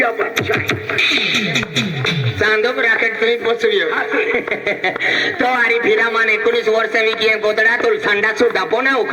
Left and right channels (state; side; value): identical; both; correlation 1.00